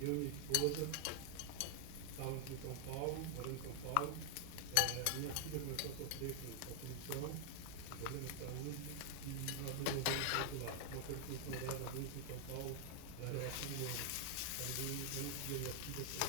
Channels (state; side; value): different; both; correlation 0.00